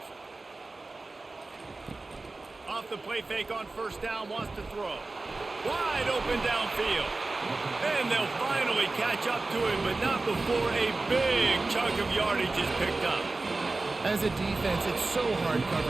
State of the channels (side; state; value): left; quieter; 3.4 dB